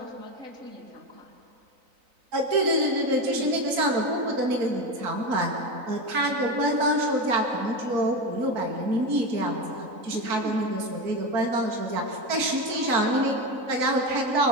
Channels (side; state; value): left; late; 3.9 ms